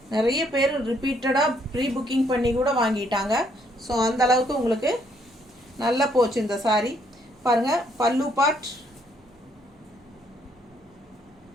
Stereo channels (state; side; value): normal; both; correlation 0.69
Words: நிறைய பேர் ரிப்பீட்டடாக ப்ரீ புக்கிங் பண்ணி கூட வாங்கிட்டாங்க. ஸோ அந்த அளவுக்கு உங்களுக்கு நல்லா போச்சு இந்த சாரீ. பாருங்கள், பல்லு பார்ட்